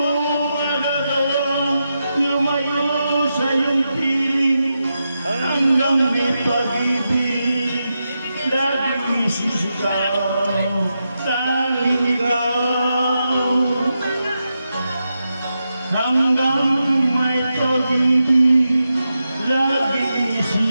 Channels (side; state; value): both; inverted; correlation -0.88